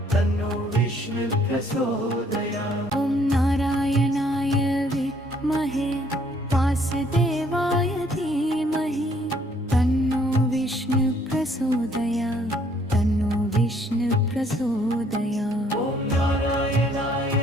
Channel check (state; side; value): normal; both; correlation 0.64